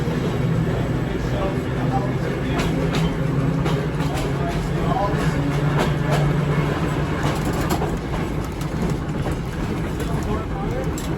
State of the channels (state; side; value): identical; both; correlation 1.00